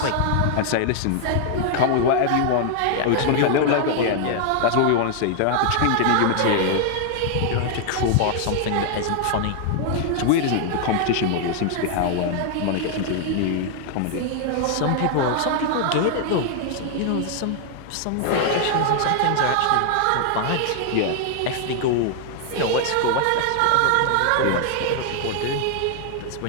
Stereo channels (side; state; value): both; different; correlation 0.00